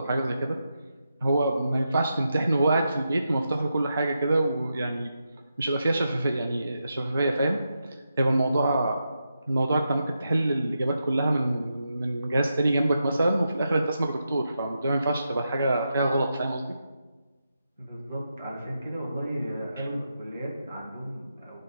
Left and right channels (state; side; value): inverted; both; correlation -0.86